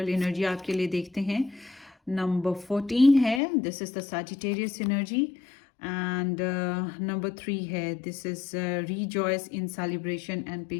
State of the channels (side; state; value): right; drops out; at 3.4 s